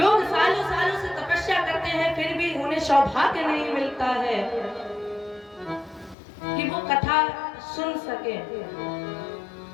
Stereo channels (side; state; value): right; drops out; at 6.2 s